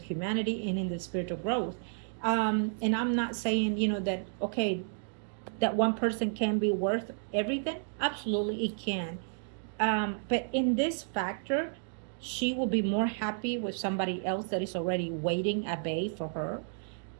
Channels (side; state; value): left; silent; digital silence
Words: and in the spiritual growth. And I'm not saying, that, okay, that one person can be worth everything. Absolutely, it can. But in this factor, she will be more happy with somebody else that is already waiting at bay for her,